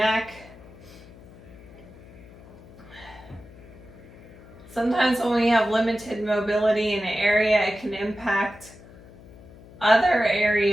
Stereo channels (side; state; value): left; noise; hum, 20 dB below the sound